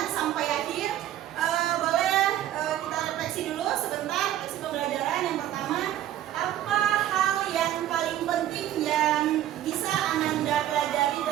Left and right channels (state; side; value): quieter; left; 12.3 dB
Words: sampai akhir, boleh kita refleksi dulu sebentar, refleksi pembelajaran. Yang pertama, apa hal yang paling penting yang bisa Ananda pelajari